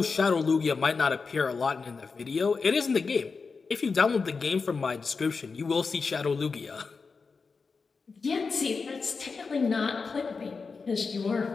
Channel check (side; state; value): right; quieter; 4.7 dB